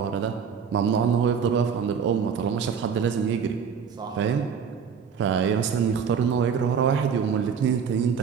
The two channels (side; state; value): left; quieter; 6.9 dB